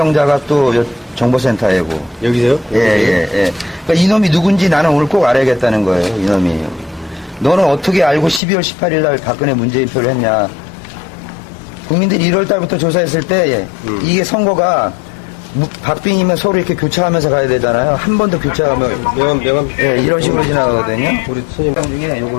또 정보센터이고. 여기서요? 예. 그러니까 이놈이 누군지 나는 오늘 꼭 알아야겠다는 거예요, 이놈이. 너는 어떻게 알고 12월 18일 날 박근혜 문재인표를 했냐. 국민들이 1월 달부터 조사했을 때 이게 선거가 박빙이면 서로 이렇게 교차하면서 가야 되잖아요. 한 번 더 교차하면 명함. 예, 이런 식으로 지나가거든요. 우리 선임 중에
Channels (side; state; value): right; drops out; at 8.4 s